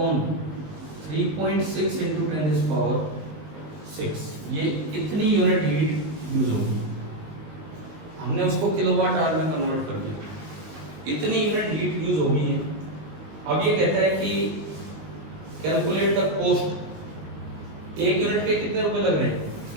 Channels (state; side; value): late; left; 19 ms